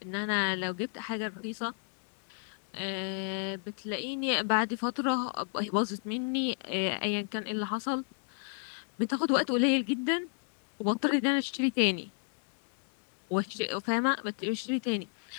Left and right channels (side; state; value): right; silent; 56 dB below the other